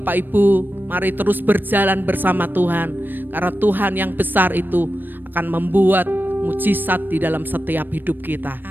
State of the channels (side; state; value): left; late; 0.093 ms